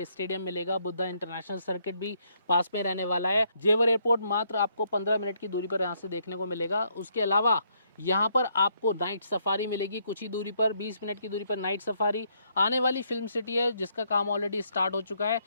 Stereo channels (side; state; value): both; inverted; correlation -0.72